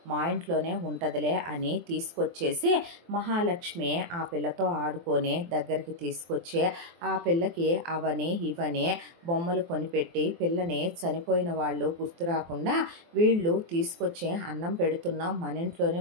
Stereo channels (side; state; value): left; late; 23 ms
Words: మా ఇంట్లోనే ఉంటదిలే అని తీసుకొచ్చేసి మహాలక్ష్మి ఆ పిల్లతో ఆడుకొని దగ్గరికి తీసుకొచ్చి ఆ పిల్లకి అవని ఇవని బొమ్మలు కొనిపెట్టి పిల్లని చనిపోయిన వాళ్ళు గుర్తు రాకుండా వీళ్ళు తీసుకొచ్చి అన్నం పెడుతున్నాం, మన ఇంట్లోనే